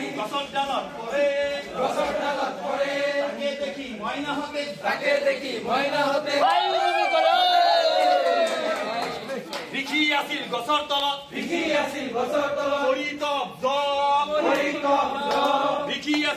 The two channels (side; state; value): both; identical; correlation 1.00